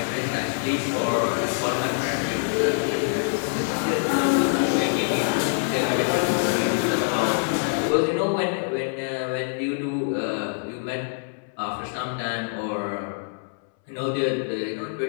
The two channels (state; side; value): silent; right; 62 dB below the other